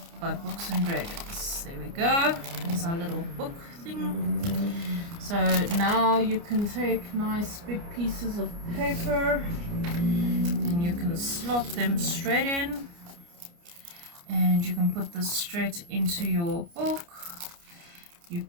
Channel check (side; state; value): left; late; 29 ms